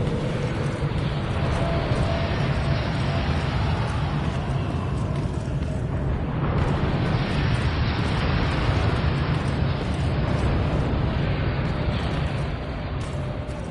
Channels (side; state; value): both; identical; correlation 1.00